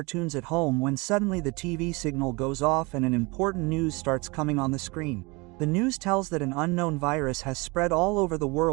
at home when suddenly the TV signal goes off and an important news starts coming on the screen. The news tells that an unknown virus has spread all over the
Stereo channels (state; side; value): quieter; left; 26.2 dB